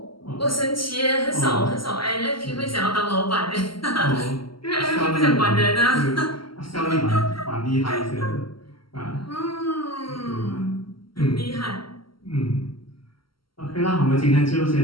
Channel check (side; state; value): right; late; 0.74 ms